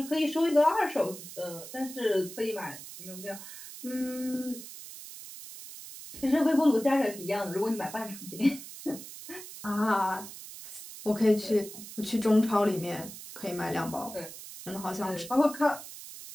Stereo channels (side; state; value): right; noise; hiss, 13 dB below the sound